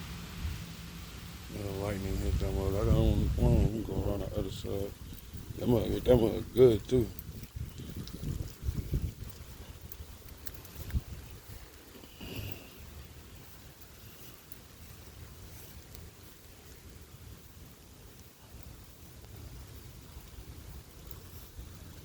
Yeah, lightning hit that mug. I got on go around the other side. That mug hit that mug good too.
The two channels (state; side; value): identical; both; correlation 1.00